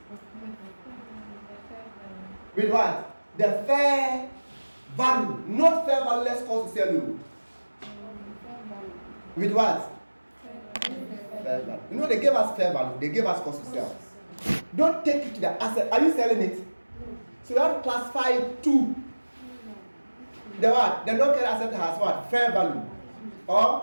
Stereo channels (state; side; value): inverted; both; correlation -1.00